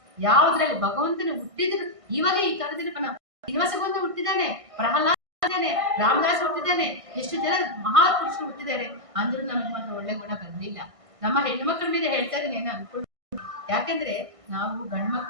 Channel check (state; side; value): late; left; 1.5 ms